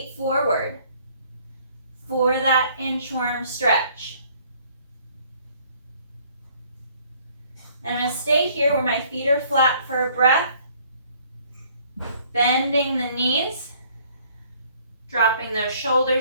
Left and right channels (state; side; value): inverted; both; correlation -0.60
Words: forward for that inchworm stretch. And I'm going to stay here where my feet are flat for a breath, bending the knees, Dropping those